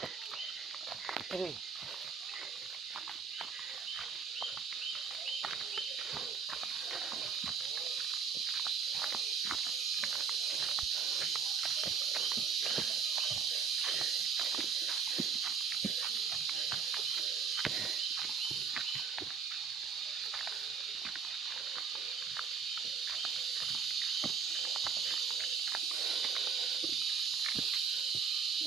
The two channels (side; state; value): left; quieter; 6.2 dB